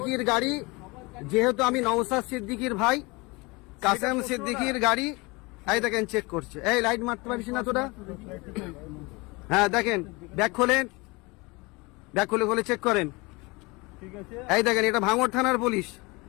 গাড়ি, যেহেতু আমি নওশাদ সিদ্দিকীর ভাই, কাসেম সিদ্দিকীর গাড়ি এই দেখেন চেক করছে। এই লাইট মারতে পারিস না তোরা? হ্যাঁ দেখেন, ব্যাগ খোলেন, ব্যাগ খুলে চেক করেন। এই দেখেন এটা ভাঙড় থানার পুলিশ।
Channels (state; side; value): quieter; right; 25.5 dB